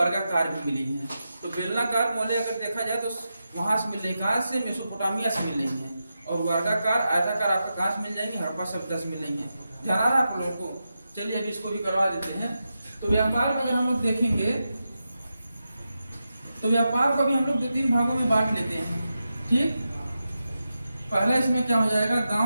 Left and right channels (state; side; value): inverted; both; correlation -0.89